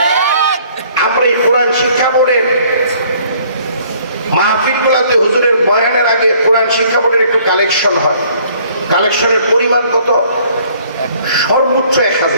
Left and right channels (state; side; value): inverted; both; correlation -0.59